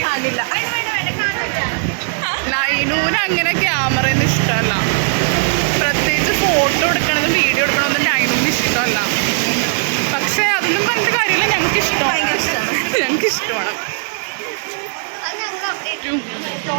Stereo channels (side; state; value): left; silent; digital silence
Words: നൈനൂന് അങ്ങനെ ക്യാമറയൊന്നും ഇഷ്ടമല്ല, പ്രത്യേകിച്ച് ഫോട്ടോ എടുക്കണതും വീഡിയോ എടുക്കണതും നൈനൊന്നും ഇഷ്ടമല്ല. പക്ഷേ അതൊന്നും പറഞ്ഞിട്ട് കാര്യമില്ല, ഞങ്ങൾക്ക് ഇഷ്ടമാണ്. ഞങ്ങൾക്ക് ഇഷ്ടമാണ്.